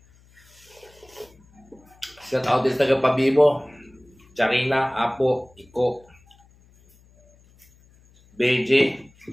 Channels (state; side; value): noise; left; hum, 29 dB below the sound